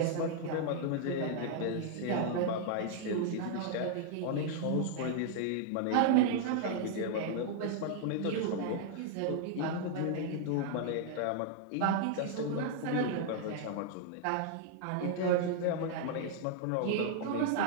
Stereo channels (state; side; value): different; both; correlation 0.00